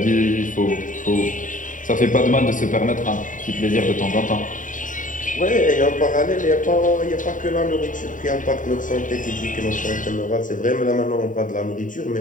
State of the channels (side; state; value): right; late; 0.38 ms